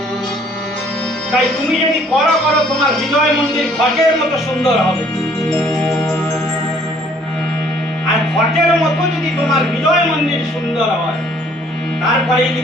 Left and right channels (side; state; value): both; normal; correlation 0.60